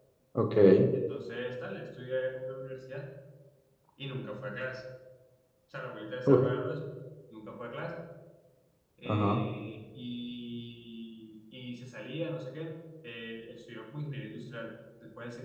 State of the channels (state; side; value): identical; both; correlation 1.00